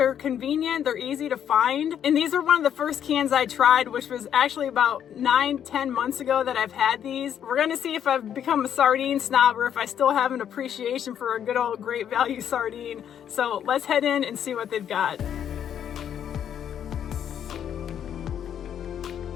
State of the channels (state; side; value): quieter; right; 9.3 dB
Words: convenient, they're easy to find. And these are one of the first cans I tried, which was actually about 9-10 months ago that I've had these. We're gonna see if I've become a sardine snob or if I still have an appreciation for a good old Great Value sardine. So let's head in and see what they've got.